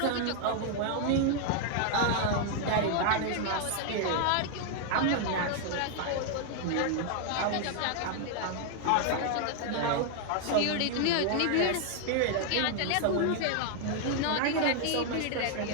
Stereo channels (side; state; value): both; different; correlation 0.00